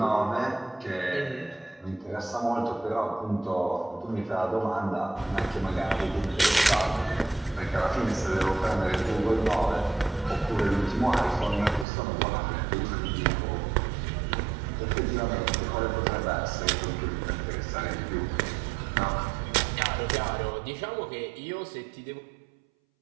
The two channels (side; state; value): left; drops out; at 11.9 s